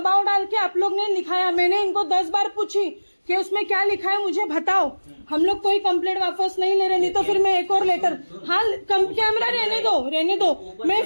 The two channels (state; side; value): inverted; both; correlation -1.00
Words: डाल के आप लोग ने लिखाया। मैंने इनको 10 बार पूछी कि उसमें क्या लिखा है मुझे बताओ। हम लोग कोई कंप्लेंट वापस नहीं ले रहे, नहीं तो फिर मैं एक और लेटर, हाँ कैमरा रहने दो, मैं